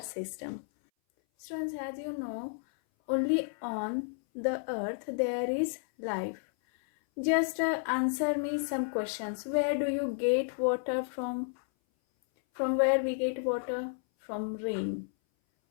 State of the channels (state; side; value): silent; right; 57 dB below the other